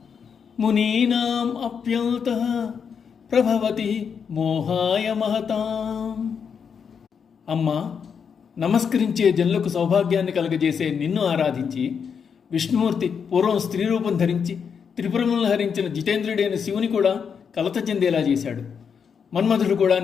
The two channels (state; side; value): quieter; right; 6.7 dB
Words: మునీనాం అప్యంతః ప్రభవతి మోహాయ మహతాం. అమ్మా, నమస్కరించే జనులకు సౌభాగ్యాన్ని కలుగజేసే నిన్ను ఆరాధించి విష్ణుమూర్తి పూర్వం స్త్రీ రూపం ధరించి త్రిపురములను హరించిన జితేంద్రుడైన శివుని కూడా కలత చెందేలా చేశాడు. మన్మధుడు కూడా